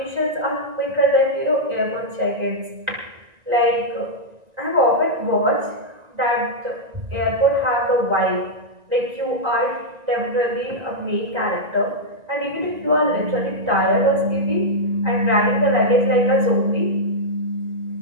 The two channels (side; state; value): left; late; 1.9 ms